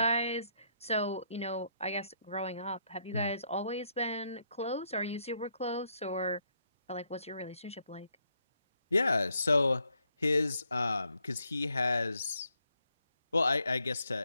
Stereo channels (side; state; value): both; inverted; correlation -0.75